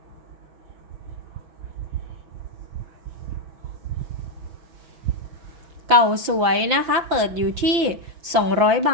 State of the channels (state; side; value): late; left; 5.8 ms